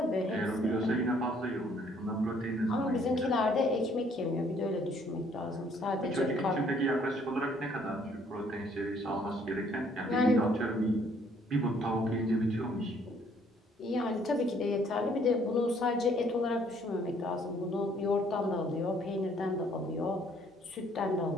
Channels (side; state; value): both; normal; correlation 0.63